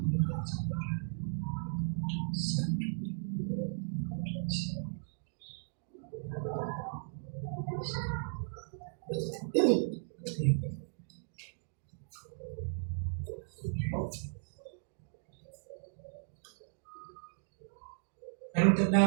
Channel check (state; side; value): silent; left; digital silence